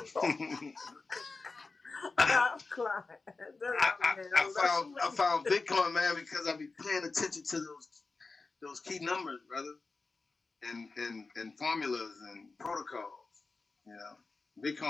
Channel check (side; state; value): right; quieter; 3.9 dB